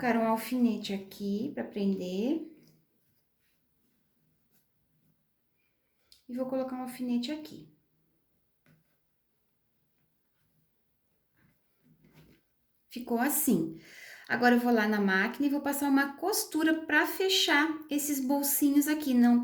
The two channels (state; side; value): identical; both; correlation 1.00